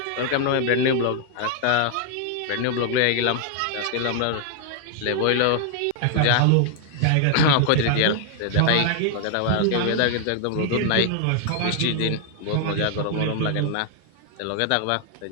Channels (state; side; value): different; both; correlation 0.00